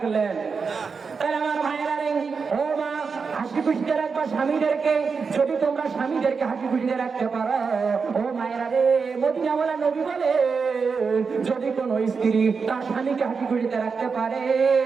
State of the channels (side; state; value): left; quieter; 5.2 dB